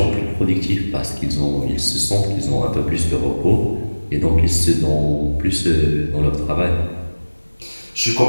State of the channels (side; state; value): both; inverted; correlation -1.00